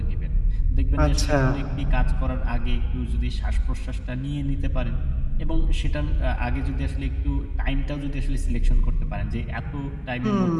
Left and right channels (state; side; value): identical; both; correlation 1.00